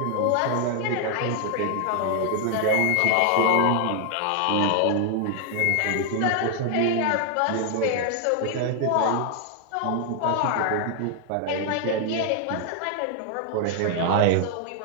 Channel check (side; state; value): both; different; correlation 0.00